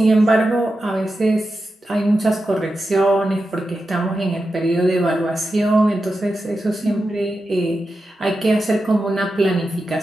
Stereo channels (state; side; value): normal; both; correlation 0.90